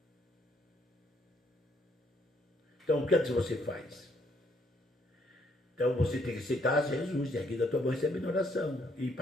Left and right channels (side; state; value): both; normal; correlation 0.69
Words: Então, o que é que você faz? Então, você tem que aceitar Jesus, erguer da tua mão e receber oração. E